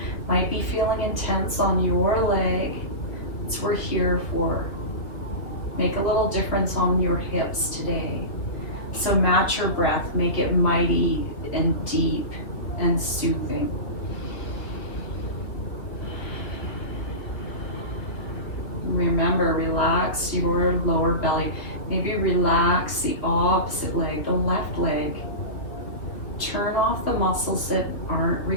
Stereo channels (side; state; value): right; late; 2.6 ms